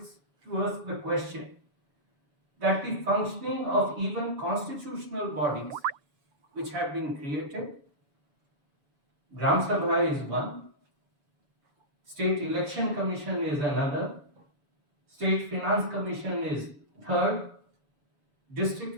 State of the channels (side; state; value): left; late; 7.0 ms